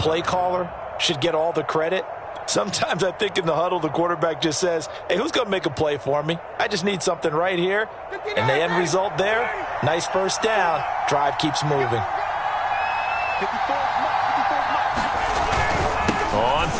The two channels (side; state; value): both; identical; correlation 1.00